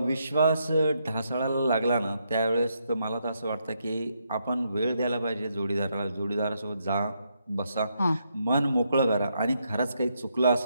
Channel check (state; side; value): inverted; both; correlation -0.78